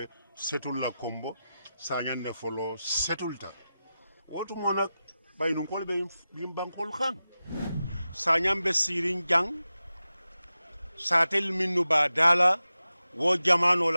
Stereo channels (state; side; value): inverted; both; correlation -0.93